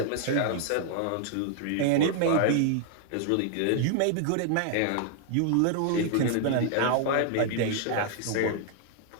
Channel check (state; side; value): different; both; correlation 0.00